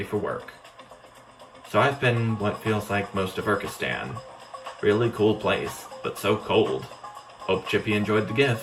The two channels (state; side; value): identical; both; correlation 1.00